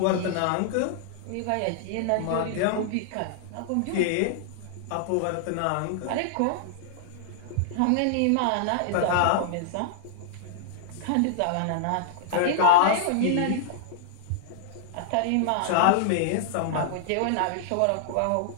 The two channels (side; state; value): both; different; correlation -0.01